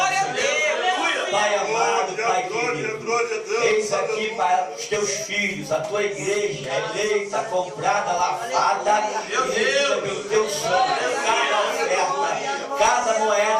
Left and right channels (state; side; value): identical; both; correlation 1.00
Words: a Deus. Pai amado, Pai querido, eis aqui para os teus filhos, a tua igreja eleita, comprada, lavada, e pelo teu sangue, cada oferta, cada